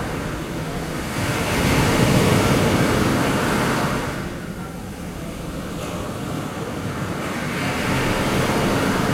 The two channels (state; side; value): identical; both; correlation 1.00